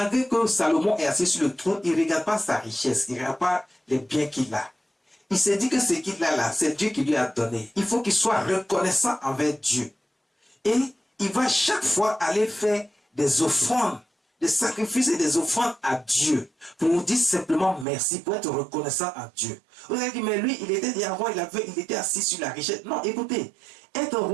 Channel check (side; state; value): left; drops out; at 17.9 s